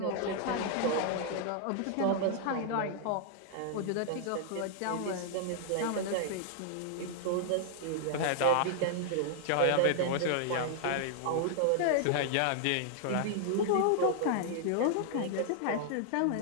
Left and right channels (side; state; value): both; different; correlation -0.01